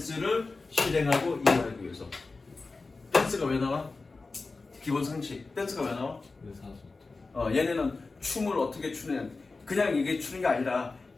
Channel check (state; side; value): quieter; right; 3.8 dB